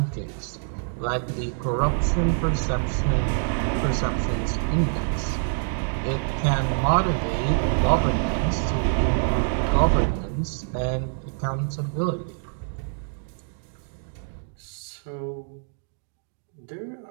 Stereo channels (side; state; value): left; silent; 61 dB below the other